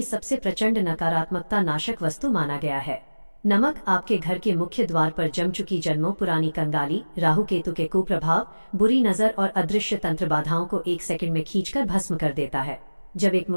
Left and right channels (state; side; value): inverted; both; correlation -1.00